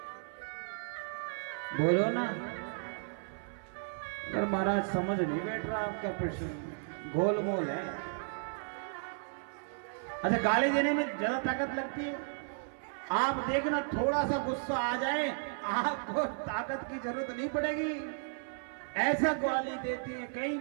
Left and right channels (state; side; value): silent; left; 55 dB below the other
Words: बोलो ना। अगर महाराज समझ नहीं बैठ रहा आपका प्रश्न, गोलमोल है। अच्छा गाली देने में ज्यादा ताकत लगती है? आप देखना थोड़ा सा गुस्सा आ जाए आपको ताकत की जरूरत नहीं पड़ेगी, ऐसा गाली देती है। कई